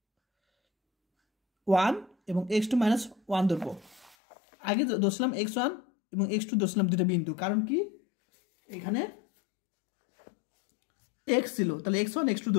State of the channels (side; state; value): right; drops out; at 4.2 s